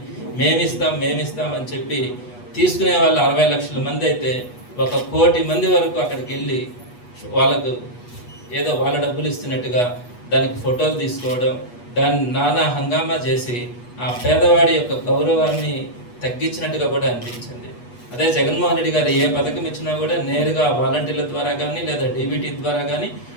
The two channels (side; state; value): right; late; 8.3 ms